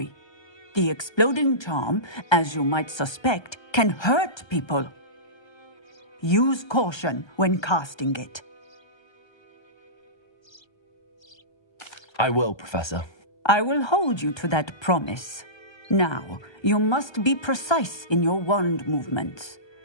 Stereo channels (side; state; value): right; late; 1.3 ms